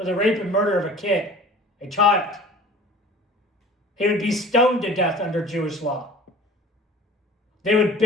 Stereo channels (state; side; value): normal; both; correlation 0.45